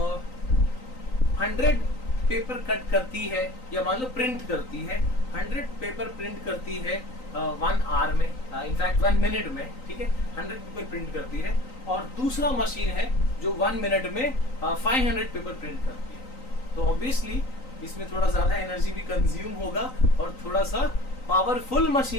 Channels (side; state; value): right; late; 3.9 ms